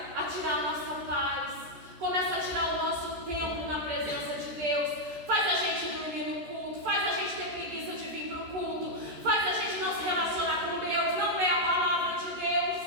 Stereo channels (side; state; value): left; late; 14 ms